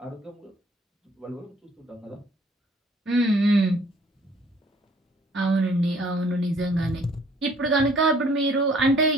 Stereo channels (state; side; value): normal; both; correlation 0.59